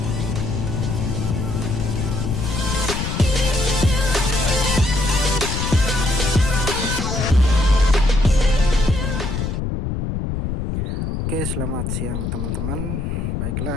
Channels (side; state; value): left; noise; rumble, 2 dB below the sound